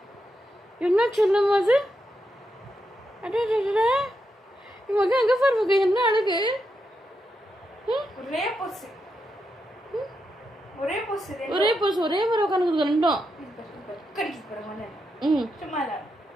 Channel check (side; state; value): both; normal; correlation 0.84